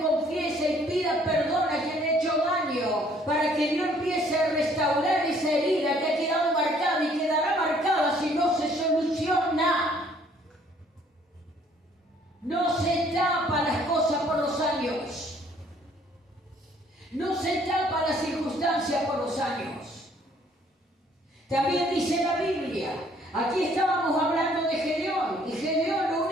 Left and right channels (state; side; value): normal; both; correlation 0.61